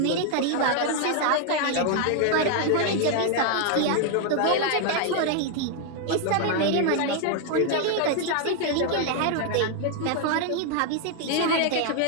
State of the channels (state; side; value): different; both; correlation 0.00